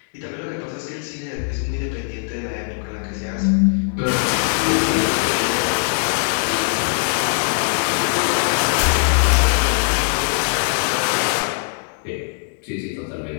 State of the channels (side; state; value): right; silent; 65 dB below the other